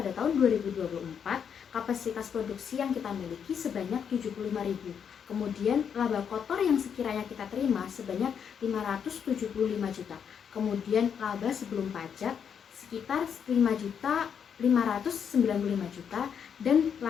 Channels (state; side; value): quieter; right; 7.5 dB